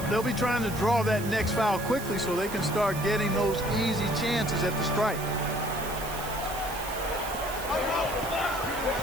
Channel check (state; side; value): noise; right; hiss, 11 dB below the sound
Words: they'll be trying to draw that next foul quickly so they can start getting those easy chances at the strike.